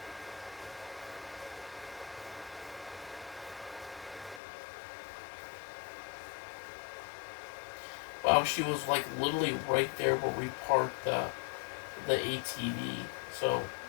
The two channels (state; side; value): drops out; right; at 4.4 s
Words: Wow, she was, like, literally right there where we parked the ATV. So,